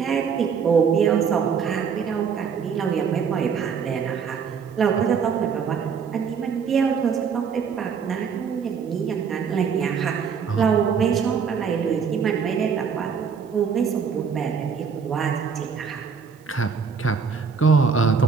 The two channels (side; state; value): left; quieter; 6.3 dB